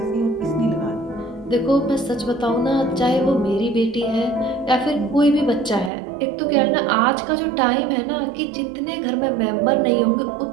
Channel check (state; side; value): drops out; left; at 5.9 s